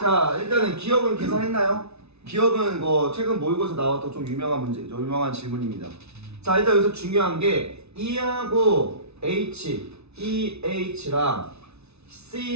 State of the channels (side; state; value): left; late; 0.80 ms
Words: 일단은 기억은 계산했나요? 기억은 뭐 최근 모의고사 나왔던 좀 유명한 질문입니다. 자, 일단 여기서 중요한 게 E하고 H, EH랑